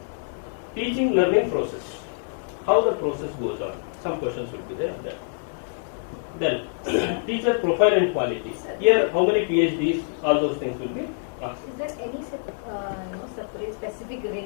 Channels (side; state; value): right; silent; digital silence